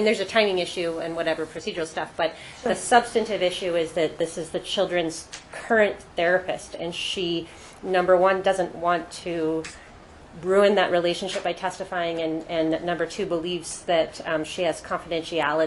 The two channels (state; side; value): identical; both; correlation 1.00